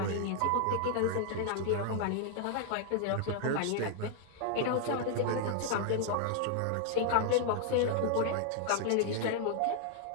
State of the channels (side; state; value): both; different; correlation 0.00